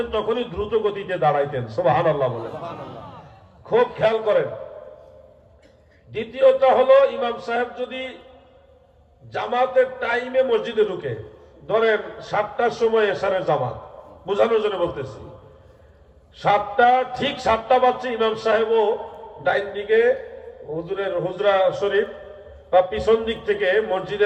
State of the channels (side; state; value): both; identical; correlation 1.00